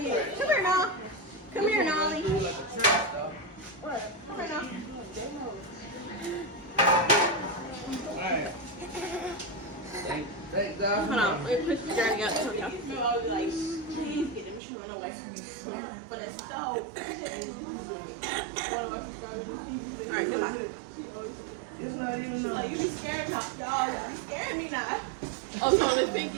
Come here, now. Come here, Nolly. What? Come here, now. Alright. Thank God. Hold on. Let me push the journey out to y'all. Please get them shoes on the way from me. But it's so. Alright, goodbye. Like, you be scared of dog. You scared me now. Oh, so Miss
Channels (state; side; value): drops out; left; at 14.6 s